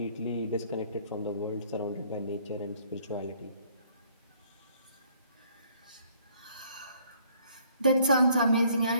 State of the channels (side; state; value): both; inverted; correlation -0.63